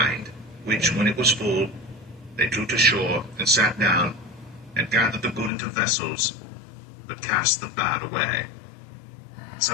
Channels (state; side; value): drops out; right; at 5.5 s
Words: which, when it was full, they drew to shore, and sat down, and gathered the good into vessels, but cast the bad away.